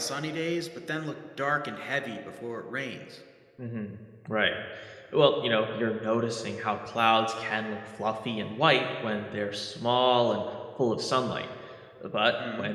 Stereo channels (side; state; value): both; identical; correlation 1.00